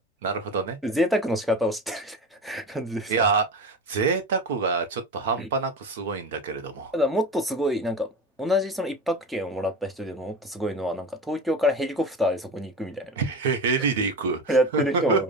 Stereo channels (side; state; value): both; normal; correlation 0.28